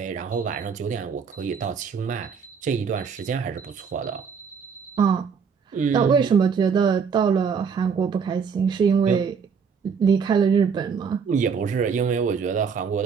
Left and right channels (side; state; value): left; quieter; 6.2 dB